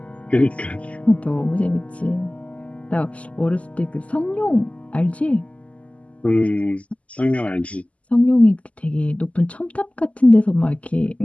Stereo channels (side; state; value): right; late; 0.066 ms